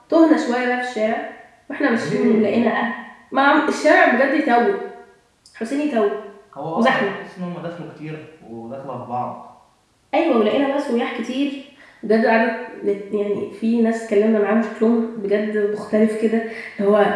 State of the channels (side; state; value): both; identical; correlation 1.00